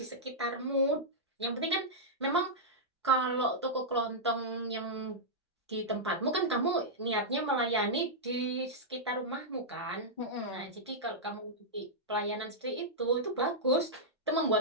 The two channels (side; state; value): both; normal; correlation -0.09